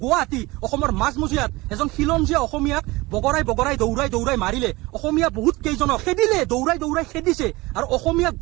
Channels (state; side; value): quieter; left; 21.6 dB